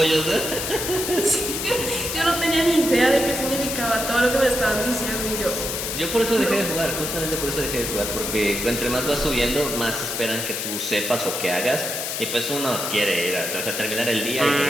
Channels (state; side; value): noise; left; hiss, 3 dB below the sound